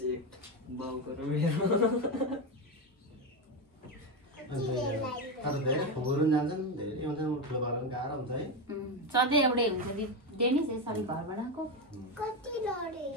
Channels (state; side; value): normal; both; correlation 0.12